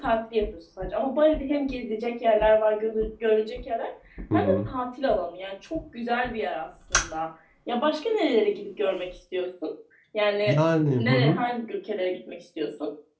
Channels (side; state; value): both; identical; correlation 1.00